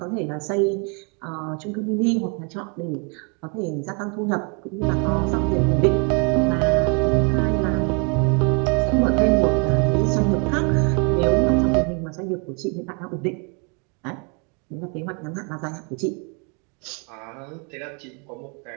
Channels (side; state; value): left; quieter; 35.4 dB